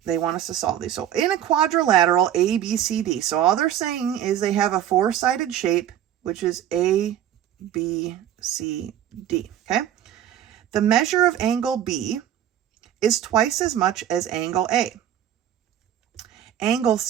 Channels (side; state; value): left; quieter; 10.9 dB